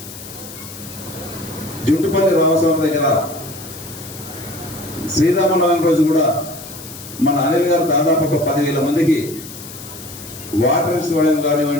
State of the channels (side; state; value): left; noise; hiss, 14 dB below the sound